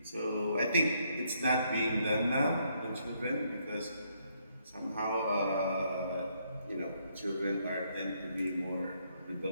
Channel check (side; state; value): both; inverted; correlation -0.73